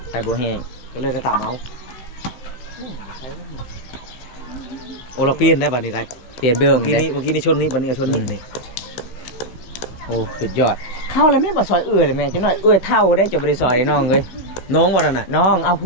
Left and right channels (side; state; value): right; late; 16 ms